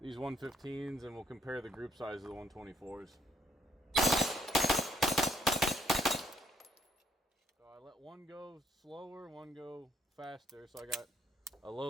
these 115s, and we'll compare the group size of the 124s. So I let one go slower, one go faster. So I got a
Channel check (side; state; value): both; normal; correlation 0.67